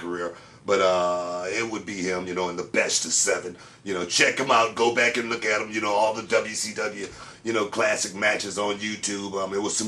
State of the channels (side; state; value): both; identical; correlation 1.00